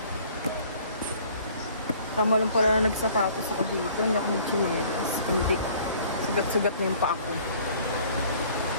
Tama lang pala na nagsapatos ako dito. Hindi ako nagchinelas. Hindi. Sugat-sugat na yung pa ako.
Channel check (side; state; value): both; inverted; correlation -0.54